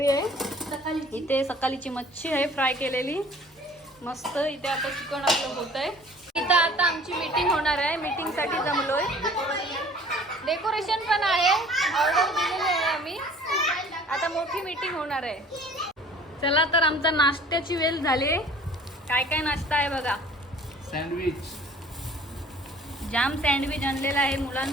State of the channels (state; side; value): normal; both; correlation 0.50